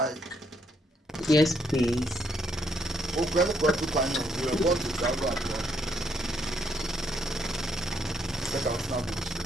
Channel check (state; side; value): normal; both; correlation 0.72